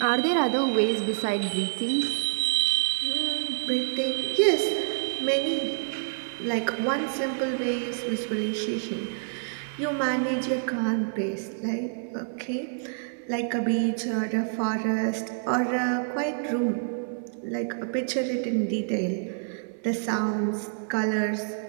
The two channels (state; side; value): silent; left; 60 dB below the other